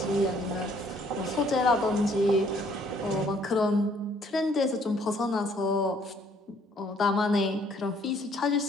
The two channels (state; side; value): normal; both; correlation 0.63